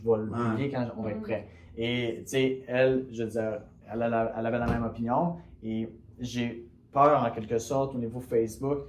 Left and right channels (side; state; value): both; identical; correlation 1.00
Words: le publier quand on va être prêt. Et tu sais, elle, je veux dire, elle avait la même opinion et j'ai peur en quelque sorte au niveau Facebook